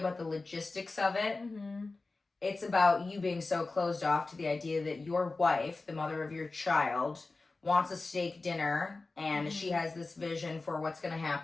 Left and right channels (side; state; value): right; quieter; 3.5 dB